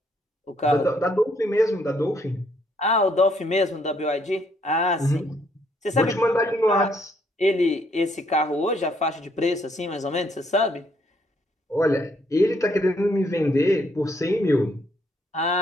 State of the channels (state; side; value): normal; both; correlation 0.70